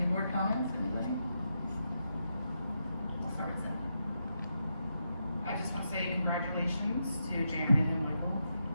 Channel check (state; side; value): inverted; both; correlation -0.84